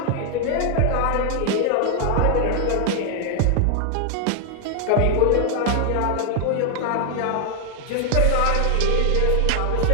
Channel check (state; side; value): different; both; correlation 0.00